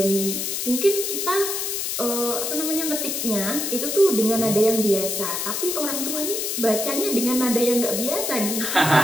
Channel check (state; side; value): noise; left; hiss, 2 dB below the sound